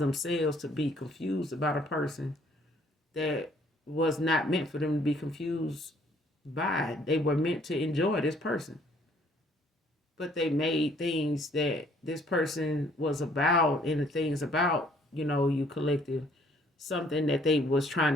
to be confused about a person that was not meant for them to be confused by. They were meant to enjoy this person. But they made things that this person was about, and the things about, you collective, something that they was trying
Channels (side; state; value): both; normal; correlation 0.62